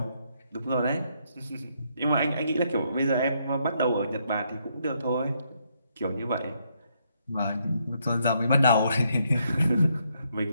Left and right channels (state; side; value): inverted; both; correlation -0.75